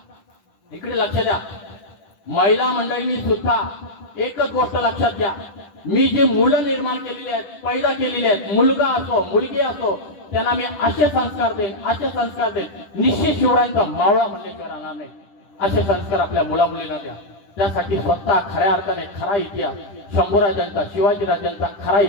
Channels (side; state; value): right; late; 10 ms